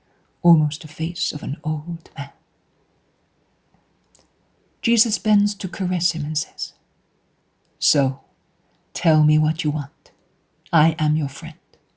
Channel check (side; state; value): both; identical; correlation 1.00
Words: almost the face of an old man. Jesus bends to caress him and says, "So, tell me what you want. I am your friend.